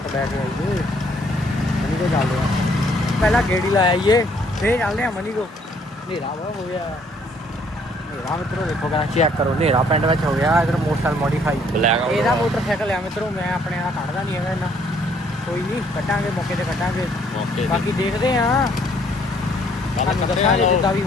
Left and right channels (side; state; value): both; normal; correlation 0.64